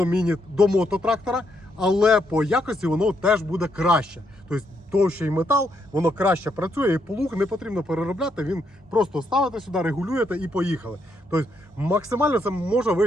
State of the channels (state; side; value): normal; both; correlation 0.77